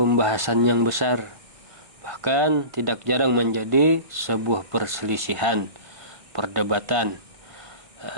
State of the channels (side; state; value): left; late; 1.6 ms